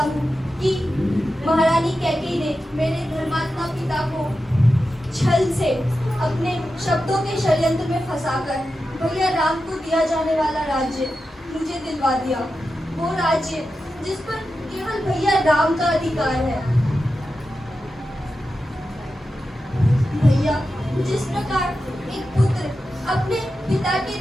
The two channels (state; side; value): normal; both; correlation 0.91